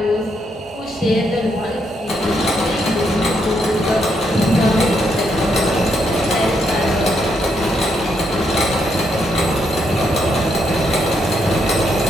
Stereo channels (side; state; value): both; normal; correlation 0.77